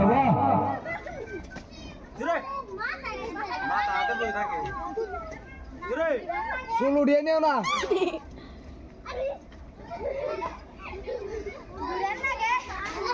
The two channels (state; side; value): identical; both; correlation 1.00